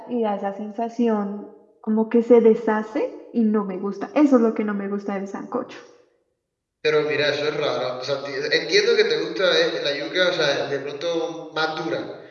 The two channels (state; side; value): identical; both; correlation 1.00